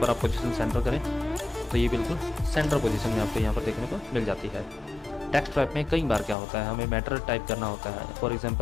आप पोजीशन सेंटर करें तो ये बिल्कुल सेंटर पोजीशन में आपको यहाँ पर देखने को मिल जाती है। टेक्स्ट टाइप में कई बार क्या होता है, हमें मैटर टाइप करना होता है। फॉर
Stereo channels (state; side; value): drops out; right; at 6.4 s